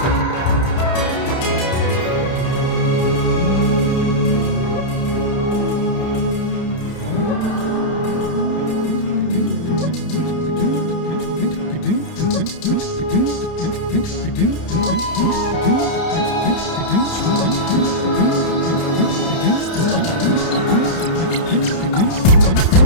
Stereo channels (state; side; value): late; right; 30 ms